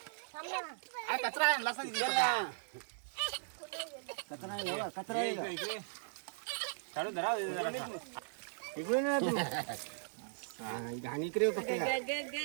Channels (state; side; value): silent; left; digital silence